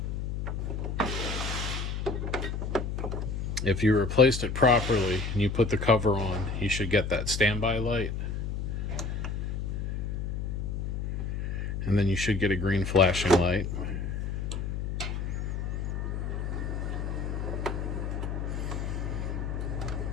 If you replaced it properly and you put the cover on, you should get that standby light. And then you should get a green flashing light.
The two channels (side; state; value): left; noise; hum, 2 dB below the sound